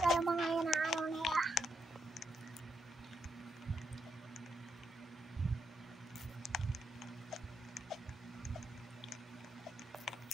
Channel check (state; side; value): normal; both; correlation 0.80